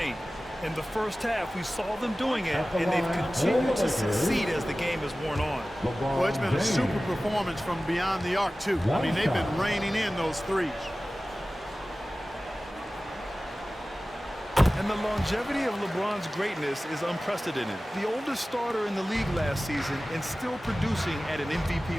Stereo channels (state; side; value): normal; both; correlation 0.97